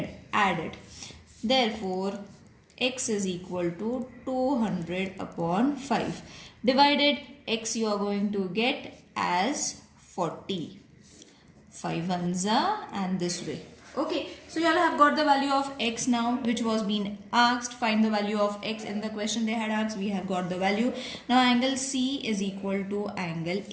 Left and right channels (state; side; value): identical; both; correlation 1.00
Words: Add it. Therefore x is equal to 200 upon 5. Divided x you are going to get as 40. 5 ones are and this way. Okay, so you all have got the value of x now, which was being asked. Find the value of x in the question they had asked. We have got the value. Now angle C is equal to angle